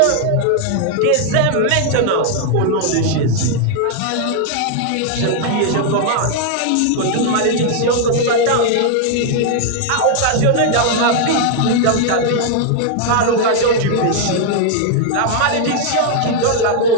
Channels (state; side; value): different; both; correlation 0.00